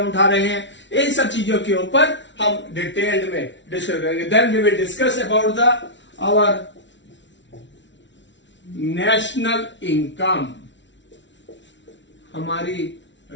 उठा रहे हैं, इन सब चीजों के ऊपर हम डिटेल्ड में डिस्कस करेंगे। Then we will discuss about the our national income, हमारी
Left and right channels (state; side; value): late; right; 0.53 ms